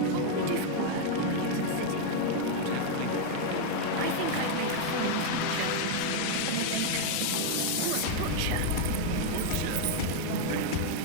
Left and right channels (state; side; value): different; both; correlation 0.01